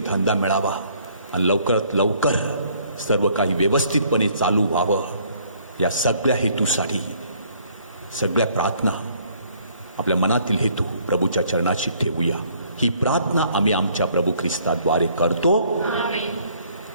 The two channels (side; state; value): both; inverted; correlation -0.62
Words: मिळावा आणि लवकरात लवकर सर्व काही व्यवस्थितपणे चालू व्हावं. या सगळ्या हेतूसाठी सगळ्या प्रार्थना, आपल्या मनातील हेतू प्रभूच्या चरणाशी ठेवूया. ही प्रार्थना आम्ही आमच्या प्रभू ख्रिस्ताद्वारे करतो.